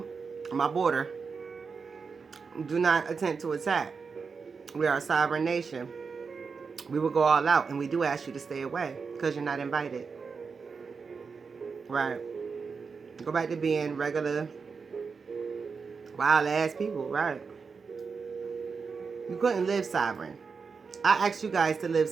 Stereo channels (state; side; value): quieter; left; 5.2 dB